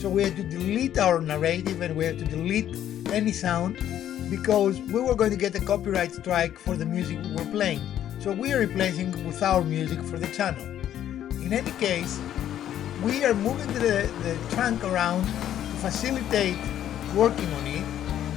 so we had to delete our narrative and we had to delete any sound because we were going to get a copyright strike for the music we were playing. So we are replacing with our music for the channel. In any case, we are moving the trunk around to facilitate working on it,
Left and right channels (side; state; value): right; quieter; 11.1 dB